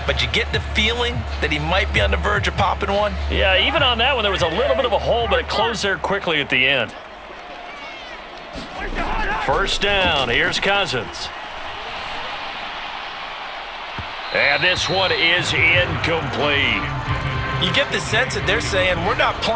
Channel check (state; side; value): identical; both; correlation 1.00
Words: but you get the feeling that he might be on the verge of popping one. Yeah, even on that one, there was a little bit of a hole, but it closed there quickly at the end. First down, here's Cousins. And this one is incomplete. You get the sense that they're saying we're not